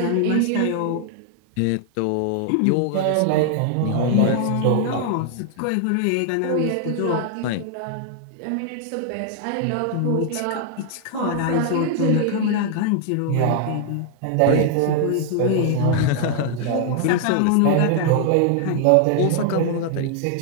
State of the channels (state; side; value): different; both; correlation 0.00